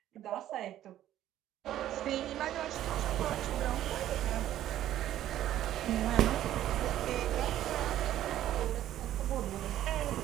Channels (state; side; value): quieter; left; 12.5 dB